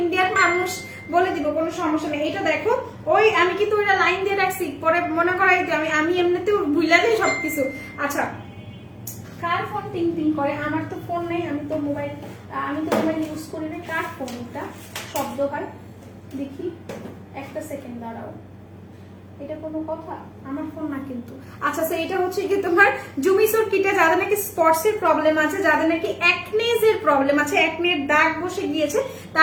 ইন্ডিয়ান মানুষ, বলে দিব, কোনো সমস্যা নেই। এটা দেখো, ওই আমি কিন্তু ওইটা লাইন দিয়ে রাখছি, পরে মনে করাই দিই। আমি এমনিতেও ভুলে যাই সবকিছু। আচ্ছা কার ফোন টিং টিং করে? আমার তো ফোন নেই, আমি তো মোবাইল ইউজ করি না। কার ফোন এটা শব্দ হয়? দেখি একটা সেকেন্ড দাঁড়াও, এটা কোনো কথা? আমার ফোন না কিন্তু। আচ্ছা এটা হচ্ছে কি তোমার জুমিসোর কিটে, যাদের নাকি স্পটস এর প্রবলেম আছে, যাদের নাকি অ্যাকনেজ এর প্রবলেম আছে, অ্যাকনের দাগ বসে গিয়েছে,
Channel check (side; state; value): both; identical; correlation 1.00